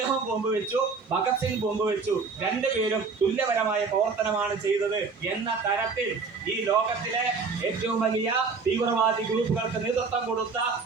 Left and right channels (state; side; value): quieter; left; 4.7 dB